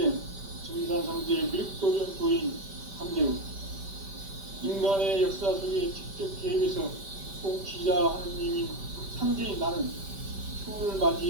증산상제 미륵도전 도인 함재훈, 인간의 역사 속에 직접 개입해서 통치자 하느님인 상제인 나는 추운을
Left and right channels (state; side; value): late; left; 5.1 ms